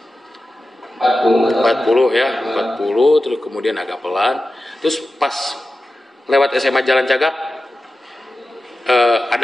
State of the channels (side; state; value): both; normal; correlation 0.94